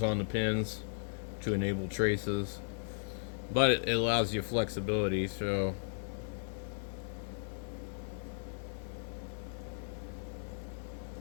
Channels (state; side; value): silent; right; 54 dB below the other